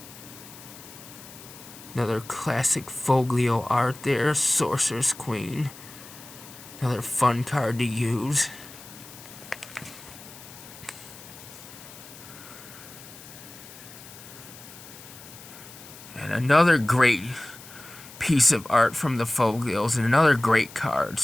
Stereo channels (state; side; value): noise; left; hiss, 17 dB below the sound